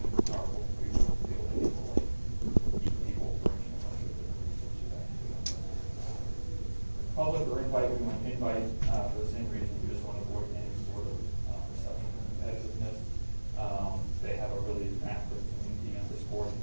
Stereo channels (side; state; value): both; inverted; correlation -1.00